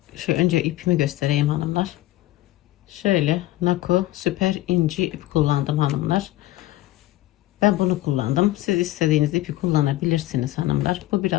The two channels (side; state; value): right; quieter; 16.4 dB